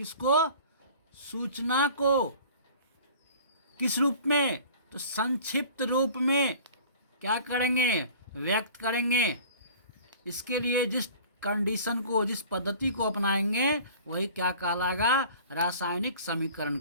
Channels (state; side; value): inverted; both; correlation -0.46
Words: सूचना को किस रूप में, तो संक्षिप्त रूप में क्या करेंगे, व्यक्त करेंगे। इसके लिए जिस कंडीशन को, जिस पद्धति को अपनाएंगे वही क्या कहलाएगा, रासायनिक समीकरण